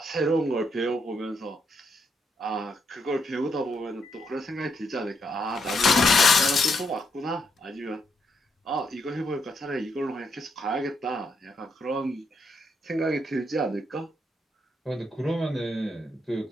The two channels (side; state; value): both; normal; correlation 0.77